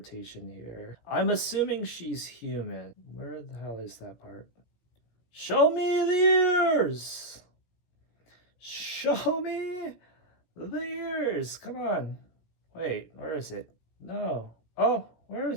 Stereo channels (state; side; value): late; right; 17 ms